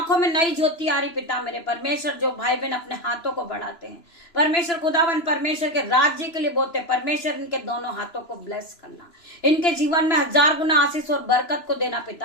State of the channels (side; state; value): right; late; 3.0 ms